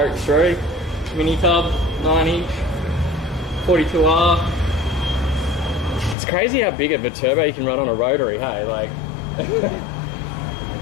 mini tub 9-inch 42R. It's crazy how big of a turbo you can run on a rotary, hey? Like,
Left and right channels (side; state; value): right; drops out; at 6.2 s